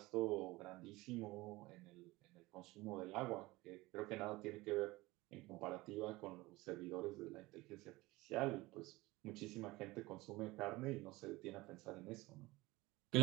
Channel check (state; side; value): quieter; left; 20.6 dB